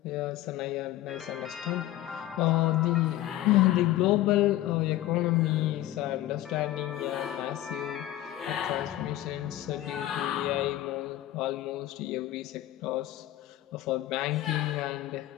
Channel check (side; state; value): right; quieter; 14.6 dB